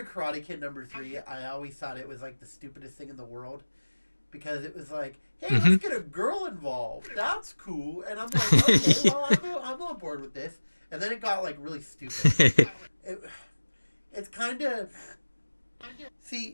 Karate Kid #3, I always thought it was like the stupidest thing in the world because it was like, hey, let's get a girl involved. That's cool, and I'm like, okay, well, I'm on board with this. And then it got like really stupid. It's kind of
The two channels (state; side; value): inverted; both; correlation -1.00